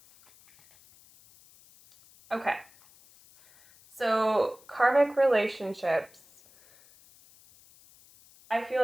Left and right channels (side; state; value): left; noise; hiss, 27 dB below the sound